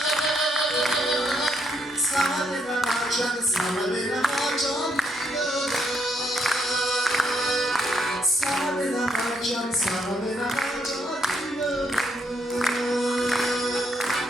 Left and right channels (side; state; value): both; normal; correlation 0.74